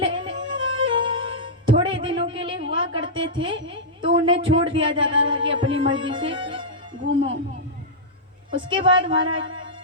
थोड़े दिनों के लिए हुआ करते थे तो उन्हें छोड़ दिया जाता था कि अपनी मर्जी से घूमो। उसके बाद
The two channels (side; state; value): both; normal; correlation -0.11